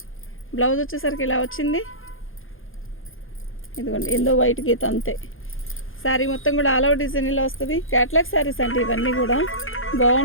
బ్లౌజ్ వచ్చేసరికి ఇలా వచ్చింది. ఇదిగోండి ఎందో వైట్ గీత అంతే. శారీ మొత్తం కూడా ఆల్ ఓవర్ డిజైన్ ఇలా వస్తుంది. క్యాట్లాగ్ శారీస్ అంటే ఇవన్నీ కూడా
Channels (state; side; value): late; right; 0.59 ms